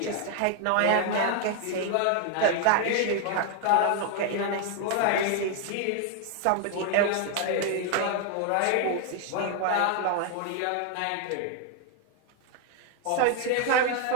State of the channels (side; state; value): both; different; correlation 0.00